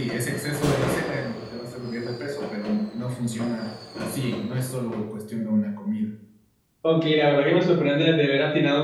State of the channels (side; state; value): both; identical; correlation 1.00